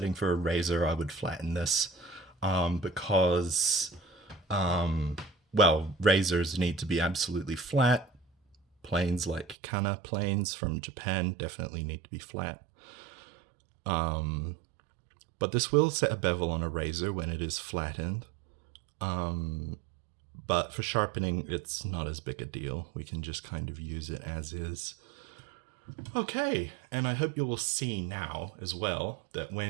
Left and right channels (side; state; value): left; drops out; at 9.6 s